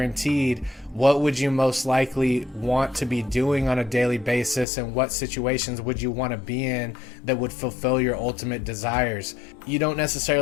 what would you most likely want to be doing on a daily basis, and what situations would you want to be in that would fulfill your ultimate desires? You don't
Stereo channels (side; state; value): right; drops out; at 4.7 s